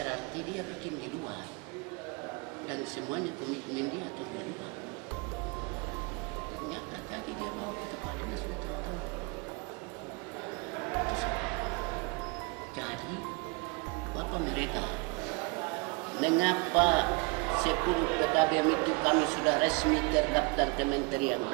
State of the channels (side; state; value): left; quieter; 29.4 dB